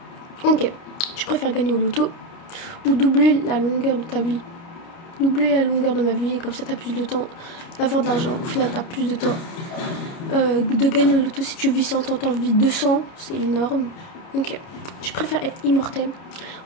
Ok, tu préfères gagner au loto ou doubler la longueur de ta vie? doubler la longueur de ma vie, et comme ça t'as plus de temps d'avoir de l'argent. Au final t'as plus de temps de gagner le loto. Si tu vis 100 ans, t'en vis 200, c'est énorme. Ok, tu préfères être immortel?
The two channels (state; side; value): late; right; 29 ms